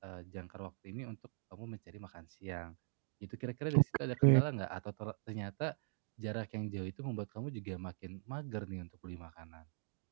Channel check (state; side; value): silent; left; digital silence